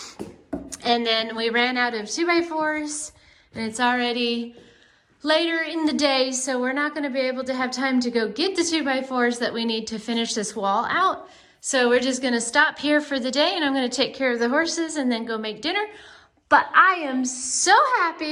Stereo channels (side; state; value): both; identical; correlation 1.00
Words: And then we ran out of 2x4s, and it's already later in the day, so we're not gonna be able to have time to go get the 2x4s that we need to finish this wall out. So we're just gonna stop here for the day, and I'm gonna take care of the horses and then go make dinner. But I am so